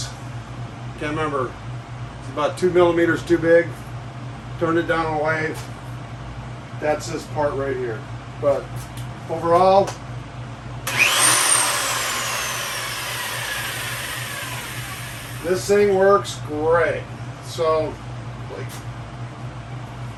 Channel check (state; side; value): identical; both; correlation 1.00